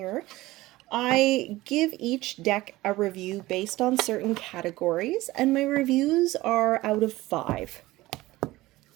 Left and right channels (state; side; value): quieter; left; 18.3 dB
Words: I give each deck a review based on certain categories, and my reviews are out of 5.